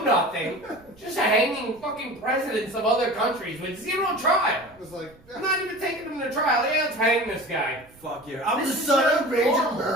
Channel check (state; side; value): noise; right; rumble, 27 dB below the sound